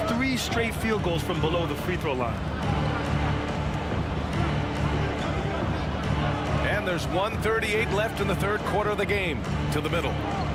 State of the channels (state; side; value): identical; both; correlation 1.00